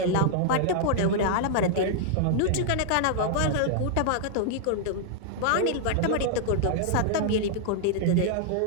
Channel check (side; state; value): both; different; correlation -0.01